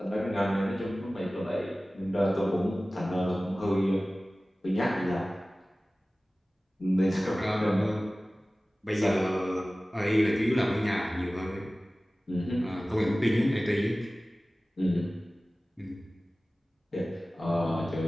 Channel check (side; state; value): both; normal; correlation 0.97